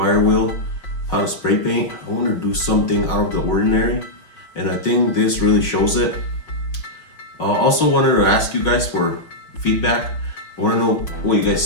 wheel, how to spray paint. I want to do something out of the ordinary, and I think this really shows it. Also wanted to ask you guys for feedback. I want to know what you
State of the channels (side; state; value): right; late; 5.9 ms